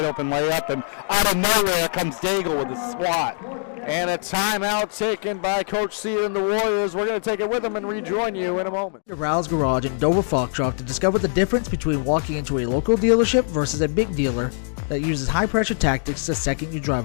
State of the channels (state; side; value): silent; right; digital silence